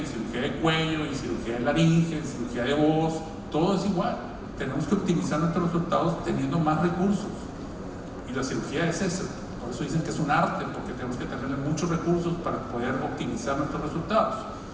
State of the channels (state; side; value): identical; both; correlation 1.00